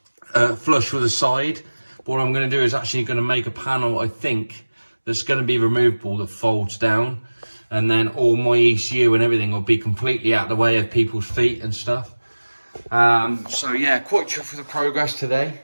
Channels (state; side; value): inverted; both; correlation -1.00